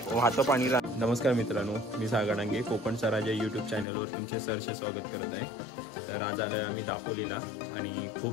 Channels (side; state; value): right; drops out; at 3.9 s